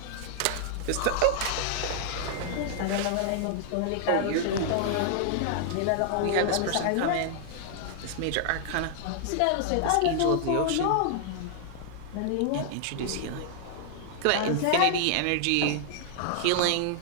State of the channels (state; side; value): different; both; correlation -0.01